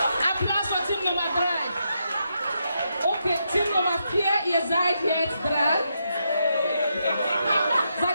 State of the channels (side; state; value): both; inverted; correlation -0.81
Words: Applaus für Team Nummer 3. Okay, Team Nummer 4, ihr seid jetzt dran.